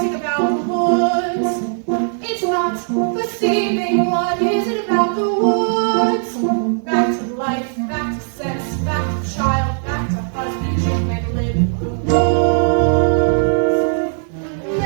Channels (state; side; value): silent; left; 57 dB below the other